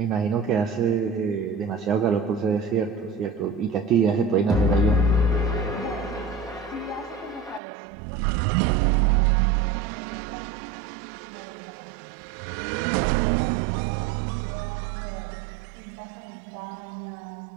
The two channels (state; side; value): drops out; left; at 7.6 s